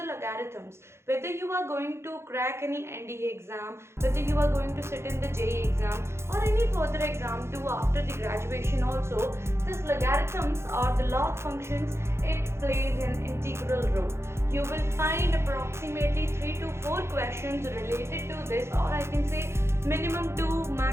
logarithms, whether you are going to crack any NDA exam, whether you are going to sit in the JEE exam or any further exam too after the graduation also, this logarithms or the log functions, it plays an integral role. You will find approximately 3 to 4 questions related to this, or I can say minimum 2,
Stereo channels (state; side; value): late; left; 0.13 ms